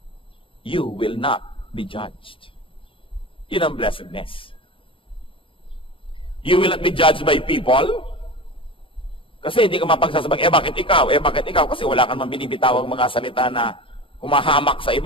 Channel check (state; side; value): late; right; 0.25 ms